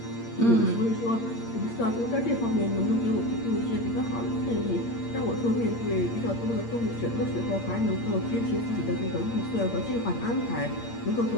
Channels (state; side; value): late; right; 8.6 ms